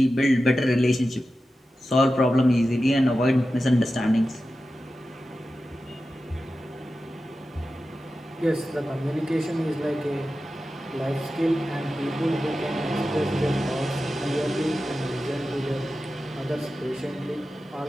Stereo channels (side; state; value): both; normal; correlation 0.93